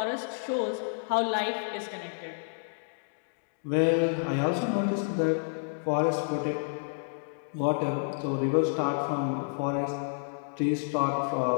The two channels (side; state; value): right; silent; digital silence